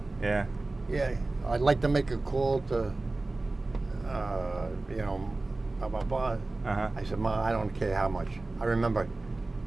Yeah. Yeah, I'd like to make a call to, blah, blah, blah. I said, Ma, I don't care how much. I remember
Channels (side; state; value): left; quieter; 3.1 dB